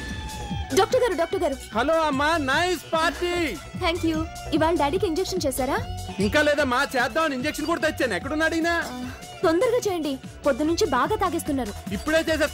డాక్టర్ గారు. హలో అమ్మా, నైస్ పార్టీ. Thank you. ఇవాళ డాడీకి ఇంజెక్షన్ చేశారా? ఇంకా లేదమ్మా, చేద్దామని ఇంజెక్షన్ కూడా తెచ్చాను. ఎక్కడున్నాడు ఈయన? తొందరగా చేయండి, పొద్దు నుంచి బాగా తాగేస్తున్నారు. ఇప్పుడే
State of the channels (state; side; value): identical; both; correlation 1.00